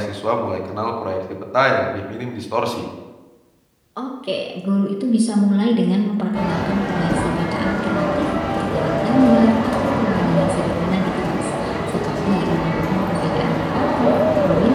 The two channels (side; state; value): both; identical; correlation 1.00